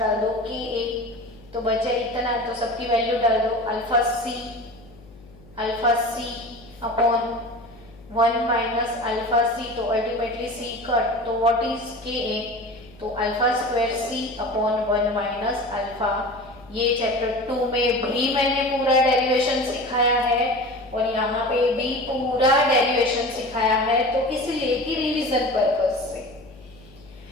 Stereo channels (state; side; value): noise; left; hum, 23 dB below the sound